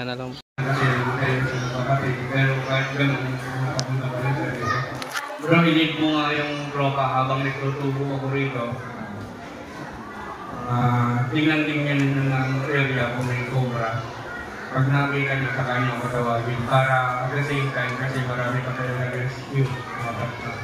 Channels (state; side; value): identical; both; correlation 1.00